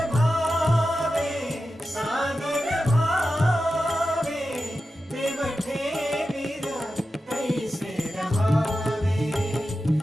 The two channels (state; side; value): normal; both; correlation 0.92